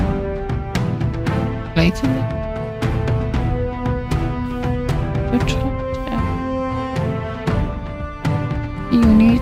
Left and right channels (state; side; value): identical; both; correlation 1.00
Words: later. Good. You need